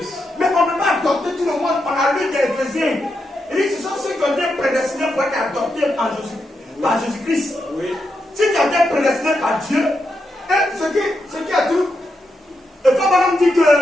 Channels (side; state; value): both; normal; correlation 0.84